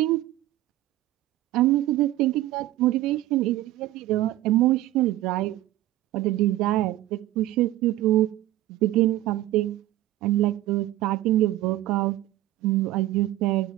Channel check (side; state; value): left; quieter; 15.2 dB